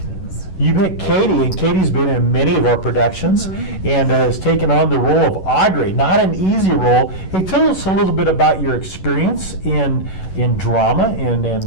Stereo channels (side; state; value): right; late; 11 ms